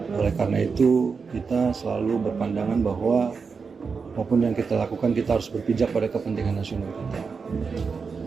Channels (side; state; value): left; quieter; 5.2 dB